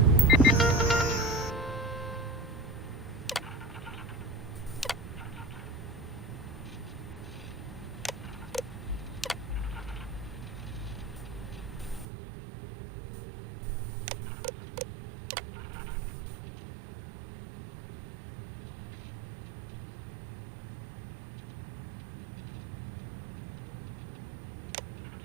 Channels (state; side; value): drops out; left; at 12.1 s